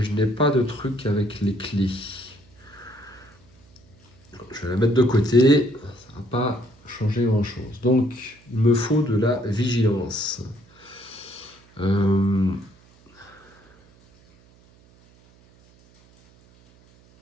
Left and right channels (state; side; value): noise; right; hum, 28 dB below the sound